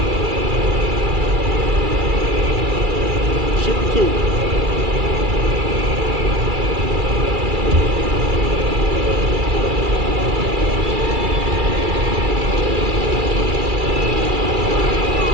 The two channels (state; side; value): late; left; 2.3 ms